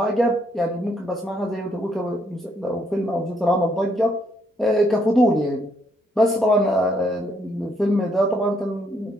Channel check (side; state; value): both; normal; correlation 0.72